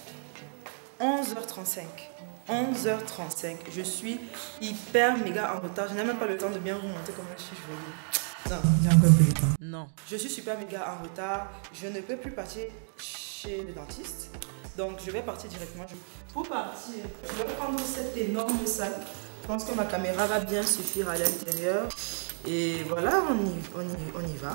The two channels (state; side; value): silent; left; 57 dB below the other